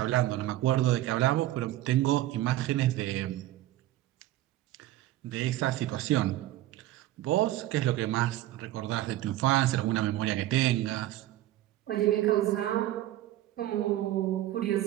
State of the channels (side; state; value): left; quieter; 14.7 dB